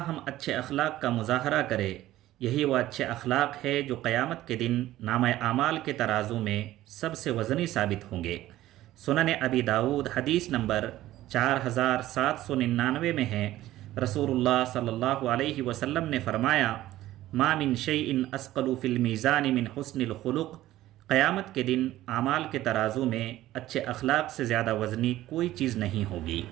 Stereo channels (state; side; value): quieter; left; 15.0 dB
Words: ہم اچھے اخلاق کا مظاہرہ کریں، یہی وہ اچھے اخلاق ہے جو قیامت کے دن نامہ اعمال کے ترازو میں سب سے وزنی ثابت ہوں گے۔ سنن ابی داؤد حدیث نمبر 4799 میں ہے، رسول اللہ صلی اللہ علیہ وسلم نے فرمایا، ما من شیء اثقل فی المیزان من حسن الخلق، قیامت کے دن اعمال کے ترازو میں اچھے اخلاق سے زیادہ وزنی کوئی چیز نہیں ہوگی۔